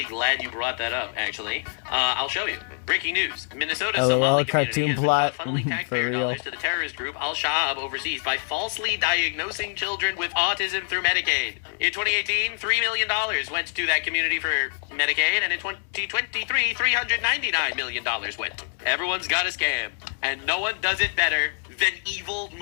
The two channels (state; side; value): silent; right; 62 dB below the other